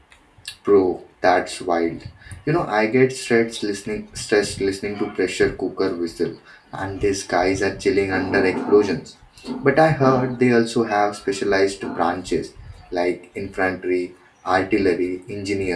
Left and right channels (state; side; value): identical; both; correlation 1.00